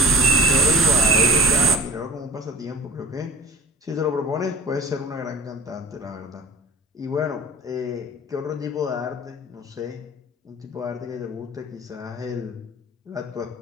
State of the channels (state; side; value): normal; both; correlation 0.43